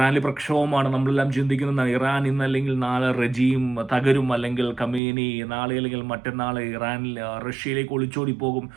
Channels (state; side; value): drops out; left; at 5.0 s